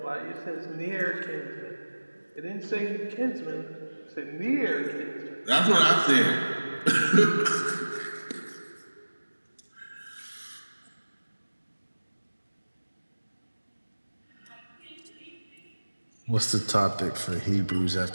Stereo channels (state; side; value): inverted; both; correlation -1.00